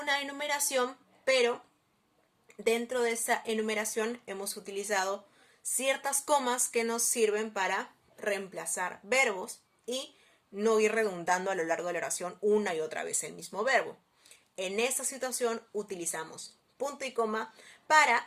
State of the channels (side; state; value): both; identical; correlation 1.00